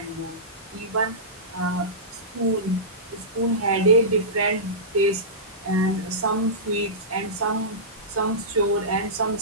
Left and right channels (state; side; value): normal; both; correlation -0.19